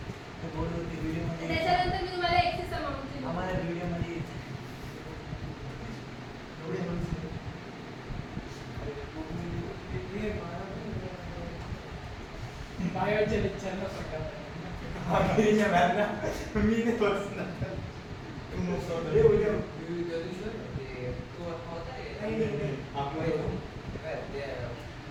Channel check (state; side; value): identical; both; correlation 1.00